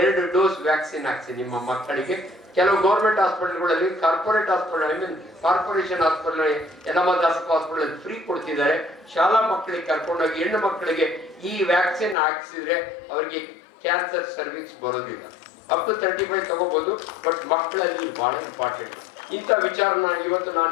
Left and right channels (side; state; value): right; drops out; at 12.2 s